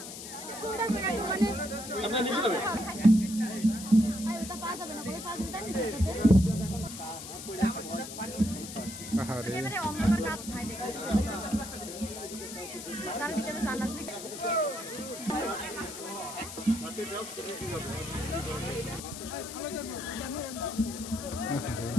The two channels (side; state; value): left; noise; hiss, 10 dB below the sound